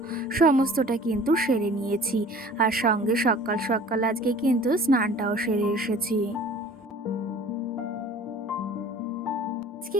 সমস্তটা কিন্তু সেরে নিয়েছি। আর সঙ্গে সকাল সকাল আজকে কিন্তু স্নানটাও সেরে এসেছি।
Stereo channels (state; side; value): normal; both; correlation 0.47